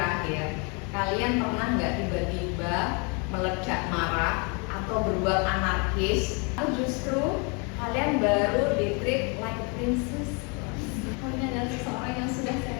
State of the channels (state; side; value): quieter; right; 33.4 dB